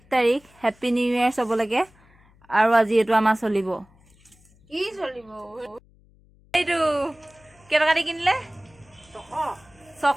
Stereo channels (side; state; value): left; noise; hum, 30 dB below the sound